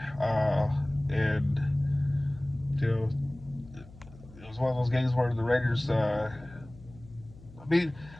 And, you know, it was one of those games where the Raiders, I mean,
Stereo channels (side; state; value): left; noise; hum, 20 dB below the sound